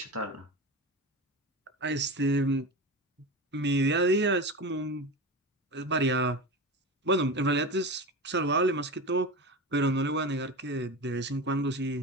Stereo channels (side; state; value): both; normal; correlation 0.26